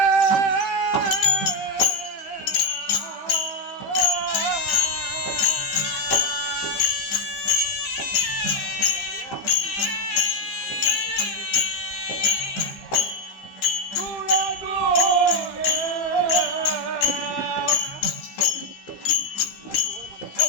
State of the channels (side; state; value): right; late; 15 ms